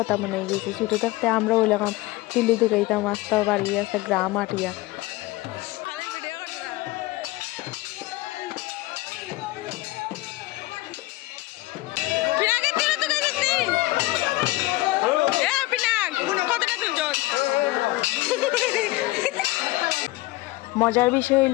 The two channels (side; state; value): right; quieter; 19.3 dB